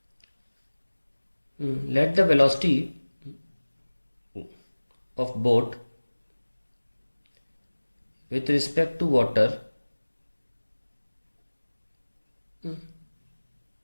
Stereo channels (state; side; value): inverted; both; correlation -1.00